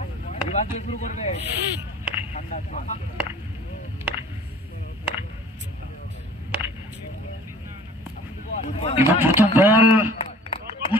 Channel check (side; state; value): both; normal; correlation 0.49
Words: এবং প্রথম বল